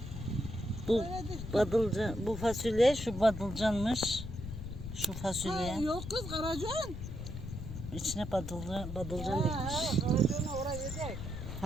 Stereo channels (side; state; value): left; noise; rumble, 8 dB below the sound